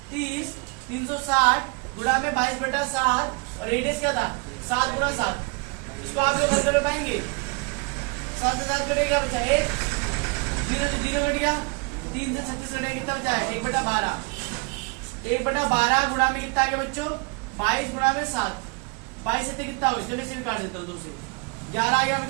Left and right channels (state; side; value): quieter; left; 30.8 dB